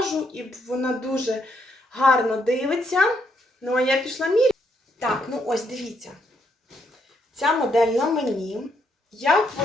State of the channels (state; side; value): normal; both; correlation 0.75